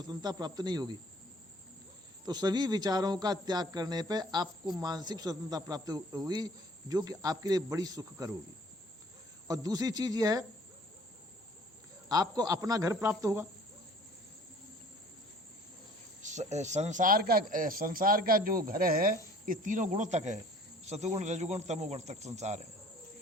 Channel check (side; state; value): both; normal; correlation 0.52